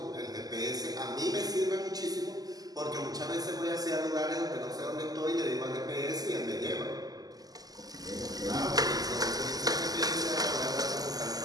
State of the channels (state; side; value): late; left; 0.18 ms